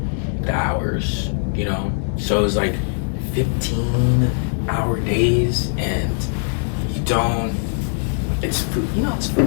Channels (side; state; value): right; silent; digital silence